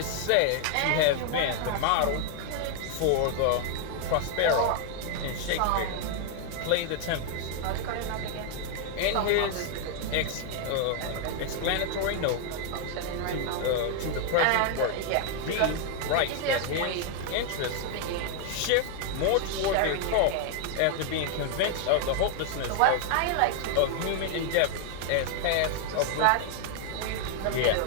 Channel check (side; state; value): both; different; correlation 0.00